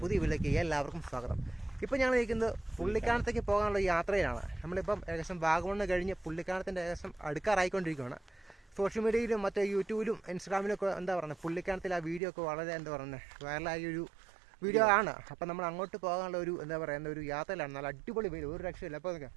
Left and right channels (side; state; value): left; drops out; at 12.2 s